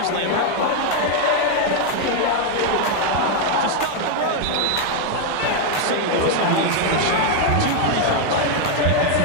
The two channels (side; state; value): both; different; correlation 0.01